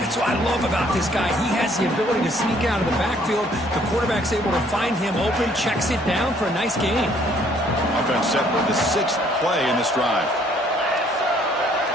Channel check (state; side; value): normal; both; correlation 0.63